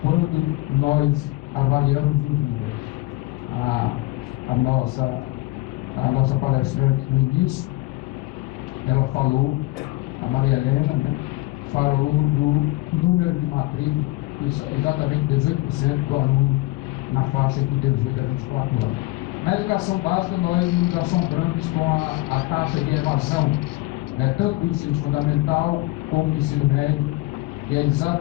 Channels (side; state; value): right; quieter; 19.5 dB